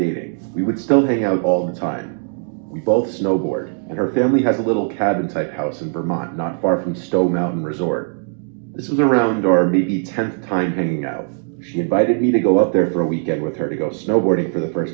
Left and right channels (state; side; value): silent; left; 56 dB below the other